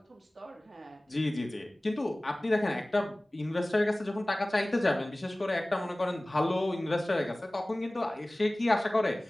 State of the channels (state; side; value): normal; both; correlation 0.98